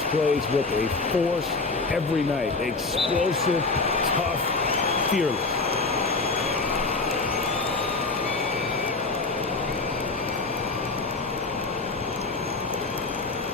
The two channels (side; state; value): right; quieter; 3.7 dB